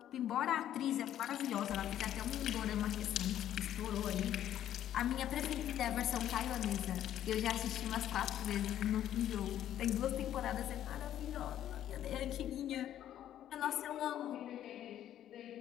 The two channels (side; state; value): right; quieter; 11.4 dB